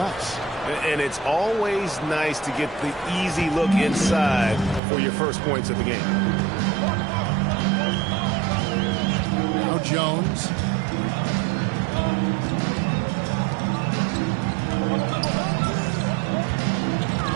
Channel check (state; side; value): drops out; left; at 4.8 s